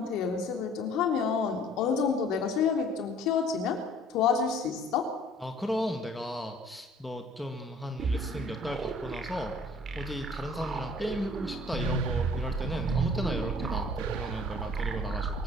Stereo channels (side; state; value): both; normal; correlation 0.53